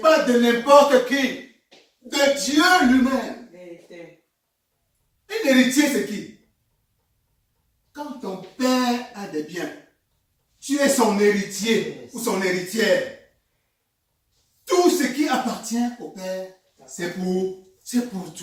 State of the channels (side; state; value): both; identical; correlation 1.00